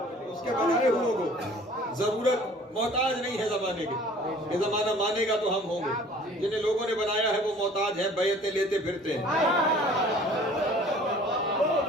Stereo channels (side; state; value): both; normal; correlation 0.50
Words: اس کے بنائے ہوئے کو ضرورت محتاج نہیں ہے زمانے کے. یہ زمانہ مانے گا تو ہم ہوں گے. جنہیں لوگوں نے بنایا ہے وہ محتاج ہیں, بیعتیں لیتے پھرتے ہیں.